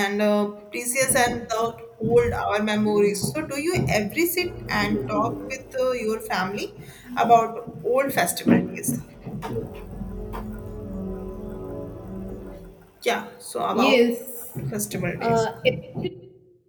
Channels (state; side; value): identical; both; correlation 1.00